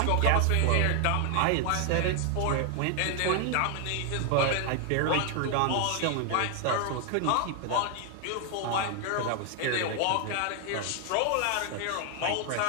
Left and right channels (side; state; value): both; different; correlation 0.00